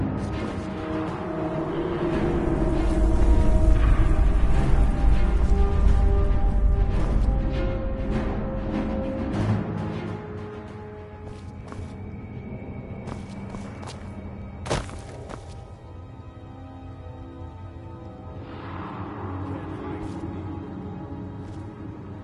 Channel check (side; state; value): both; identical; correlation 1.00